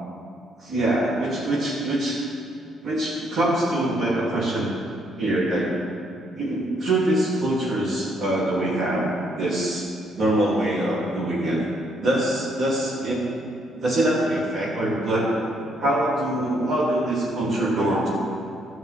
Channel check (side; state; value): both; normal; correlation 0.71